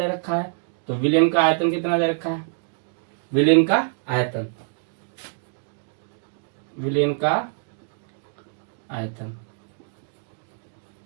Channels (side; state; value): left; silent; digital silence